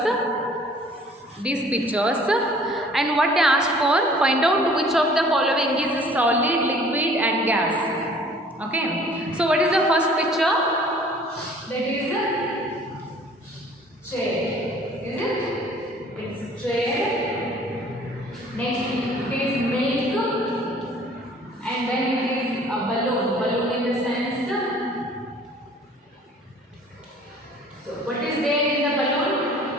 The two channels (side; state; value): both; normal; correlation 0.53